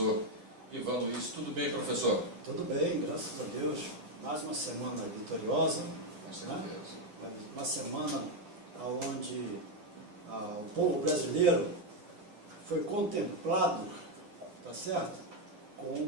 Ivan Luiz. Tudo bem, professor? Tudo bem, graças a Deus. Mais uma semana vitoriosa. Com certeza. Né? Uma semana onde o povo brasileiro foi contemplado, tá certo? Com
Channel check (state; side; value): late; left; 9.6 ms